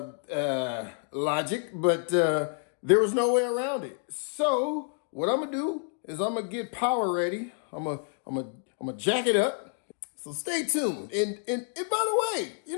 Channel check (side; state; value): right; silent; 57 dB below the other